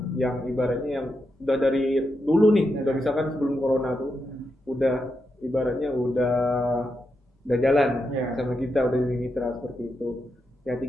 yang ibaratnya yang udah dari dulu nih, udah misalkan sebelum corona tuh udah ibaratnya udah jalan Ya. sama kita, udah jadi mitra seperti itu. Ya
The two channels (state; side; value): normal; both; correlation 0.85